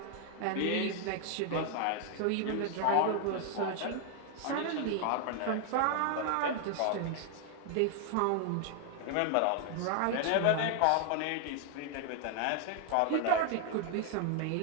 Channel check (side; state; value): both; different; correlation 0.00